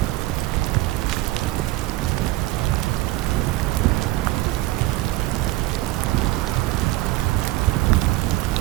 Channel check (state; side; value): quieter; left; 18.0 dB